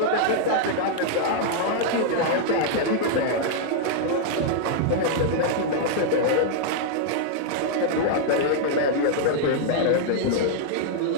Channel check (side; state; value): both; different; correlation -0.01